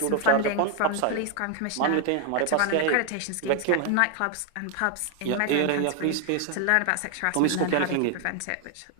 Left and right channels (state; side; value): different; both; correlation 0.00